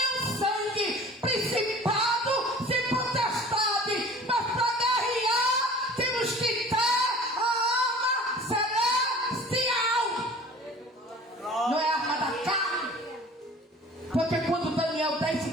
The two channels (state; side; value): normal; both; correlation 0.45